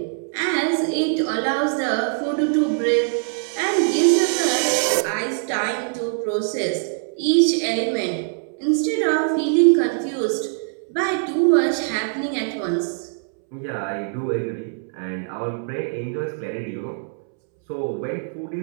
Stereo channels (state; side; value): silent; left; 64 dB below the other